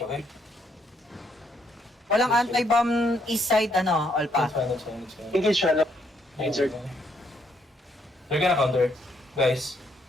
okay? Walang anti-bomb east side, Olpa. That's fine. Engage siya. Insert. They're gonna counter. Guys,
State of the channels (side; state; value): both; normal; correlation 0.72